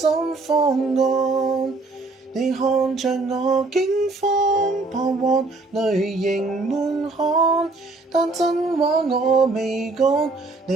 方案，你看着我驚慌彷徨，淚盈滿腔，但真話我未講。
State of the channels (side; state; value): left; quieter; 3.4 dB